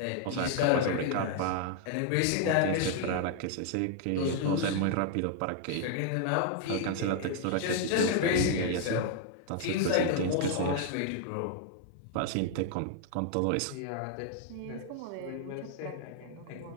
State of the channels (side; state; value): both; different; correlation 0.00